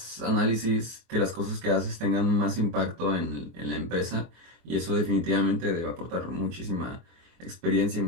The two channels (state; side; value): late; left; 24 ms